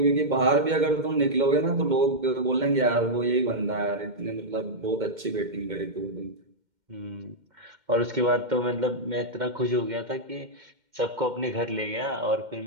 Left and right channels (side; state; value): left; late; 2.1 ms